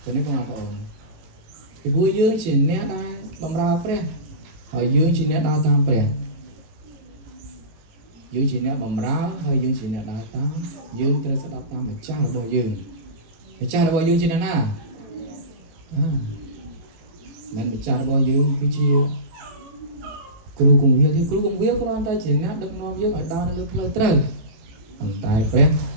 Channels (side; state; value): left; late; 18 ms